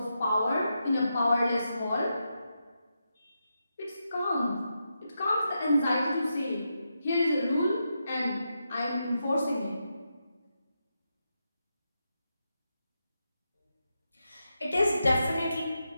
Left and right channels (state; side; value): inverted; both; correlation -0.86